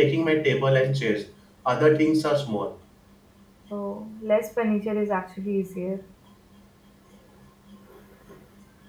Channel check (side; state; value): both; identical; correlation 1.00